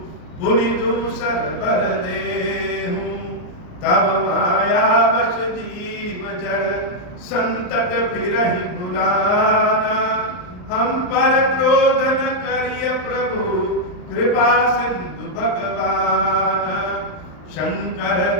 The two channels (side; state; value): right; late; 38 ms